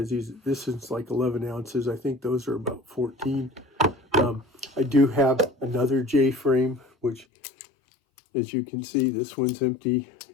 this is like 11 ounces. I think those are about 14. I do have another J-frame, which, as you can see, this one's empty.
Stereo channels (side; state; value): right; drops out; at 7.2 s